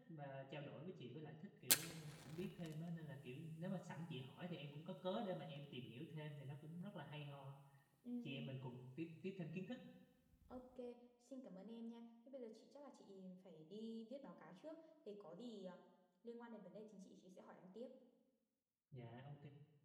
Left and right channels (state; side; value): identical; both; correlation 1.00